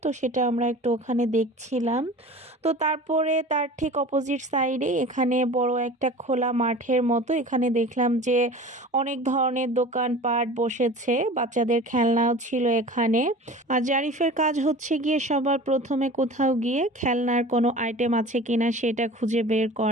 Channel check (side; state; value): both; normal; correlation 0.39